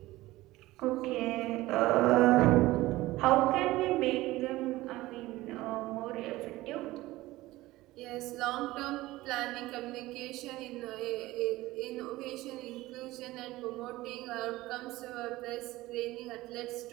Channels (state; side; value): quieter; left; 18.1 dB